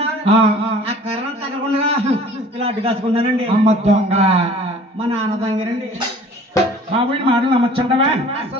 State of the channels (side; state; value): both; normal; correlation 0.49